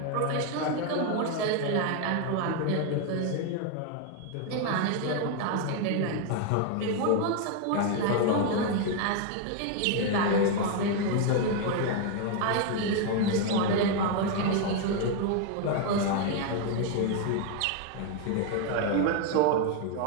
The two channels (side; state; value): both; different; correlation 0.01